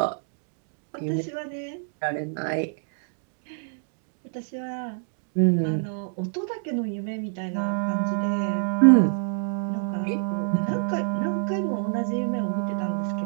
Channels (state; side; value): silent; left; digital silence